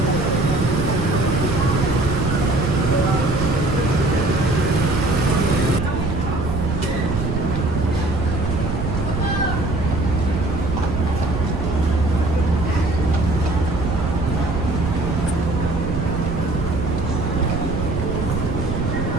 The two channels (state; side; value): noise; right; rumble, 3 dB below the sound